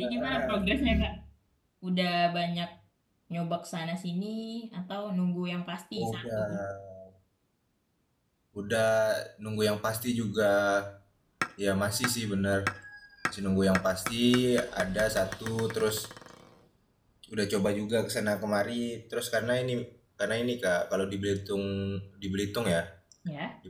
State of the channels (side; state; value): both; identical; correlation 1.00